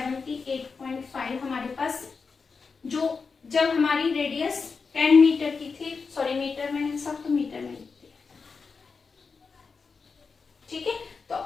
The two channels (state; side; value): quieter; right; 4.9 dB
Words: हमारे पास, जो जब हमारी रेडियस 10 मीटर की थी, सॉरी मीटर में है सब, तो मीटर में लिखते हैं, ठीक है। तो